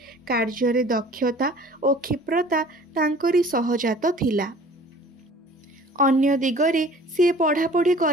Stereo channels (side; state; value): both; normal; correlation 0.48